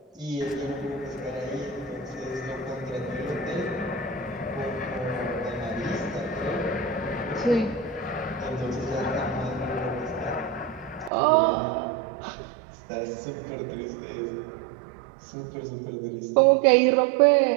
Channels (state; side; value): drops out; left; at 11.1 s